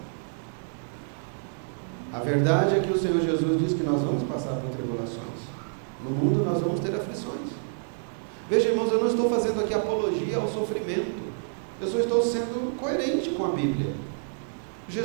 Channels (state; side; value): silent; left; digital silence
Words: A verdade é que o Senhor Jesus diz que nós vamos passar por tribulações. No mundo nós vamos ter aflições. Veja, irmãos, eu não estou fazendo aqui apologia ao sofrimento. Eu só estou sendo coerente com a Bíblia.